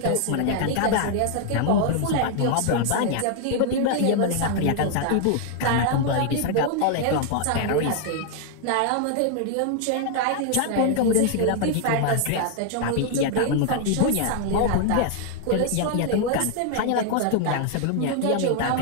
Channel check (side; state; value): both; different; correlation 0.00